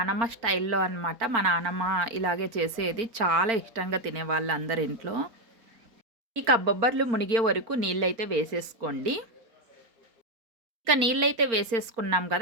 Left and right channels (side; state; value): left; late; 4.4 ms